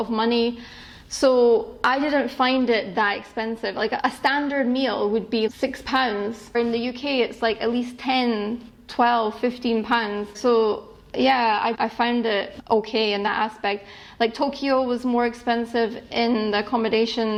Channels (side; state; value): both; identical; correlation 1.00